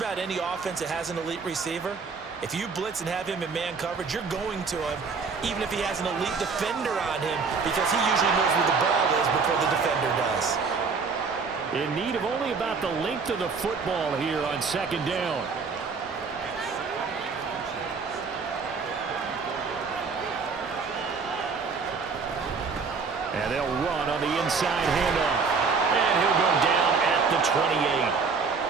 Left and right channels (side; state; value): left; quieter; 5.0 dB